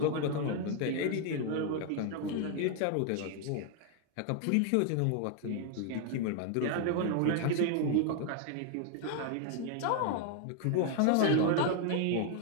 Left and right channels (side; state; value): both; different; correlation 0.00